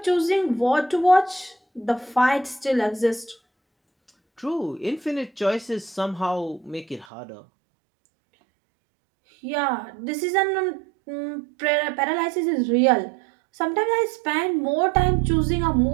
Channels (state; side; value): drops out; left; at 7.1 s